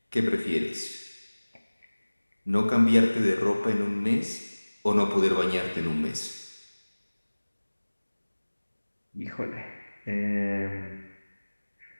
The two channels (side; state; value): both; inverted; correlation -1.00